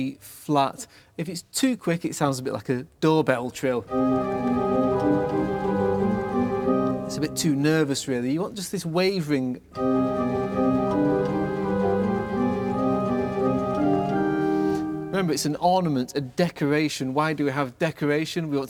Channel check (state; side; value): identical; both; correlation 1.00